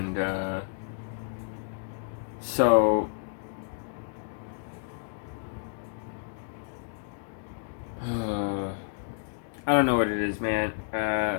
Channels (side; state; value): right; silent; digital silence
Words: so... I don't know what it is, man.